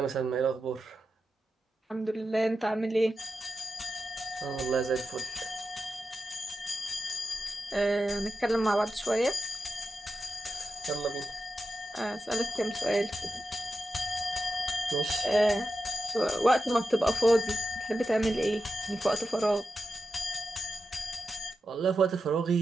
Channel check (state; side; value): normal; both; correlation 0.90